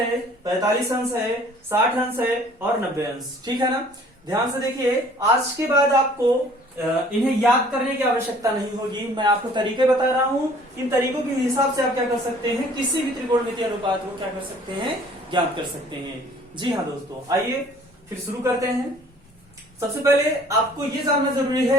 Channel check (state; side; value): normal; both; correlation 0.54